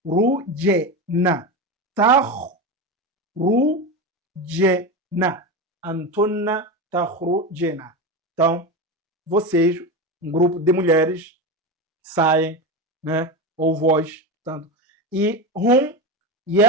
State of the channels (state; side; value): normal; both; correlation 0.20